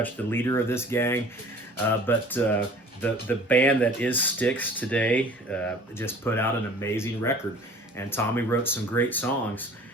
the leader of this gang. But the band that is Styx today just put out an amazing record, and Tommy wrote some great songs.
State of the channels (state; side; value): normal; both; correlation 0.47